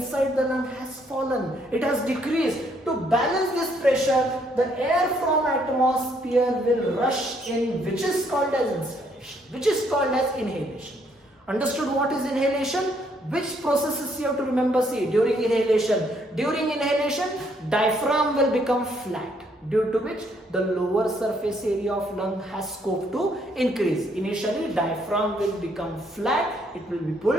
the lung has fallen. It has decreased. To balance this pressure, the air from atmosphere will rush in, which is called as inspiration, which is called as inhalation. Understood what is inhalation? Which processes you have to remember? See, during inhalation, diaphragm will become flat, due to which the lower surface area of lung has scope to increase. Initially, diaphragm will become flat, it will be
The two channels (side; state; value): both; normal; correlation 0.69